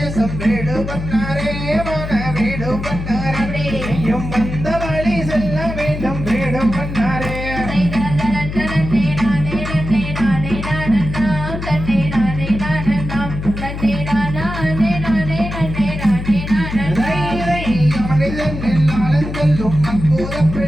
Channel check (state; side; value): noise; left; hum, 6 dB below the sound